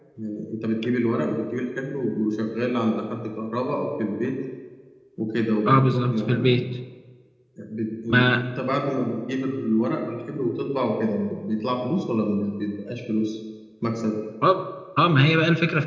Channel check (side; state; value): both; identical; correlation 1.00